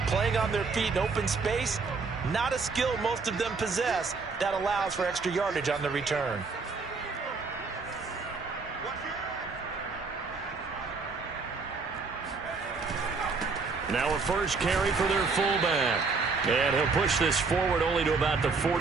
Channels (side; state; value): left; quieter; 4.5 dB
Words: playing on their feet in open space. Not a skill most of them possess that allows for extra yardage on the return. Now a first carry for their fullback. And he'll push this forward only to about the